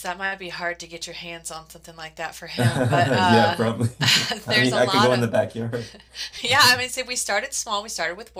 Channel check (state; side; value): identical; both; correlation 1.00